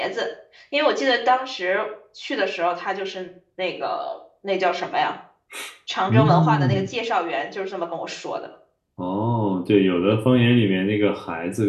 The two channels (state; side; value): identical; both; correlation 1.00